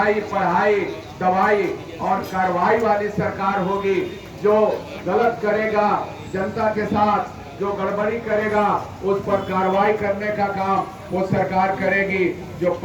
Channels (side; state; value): both; identical; correlation 1.00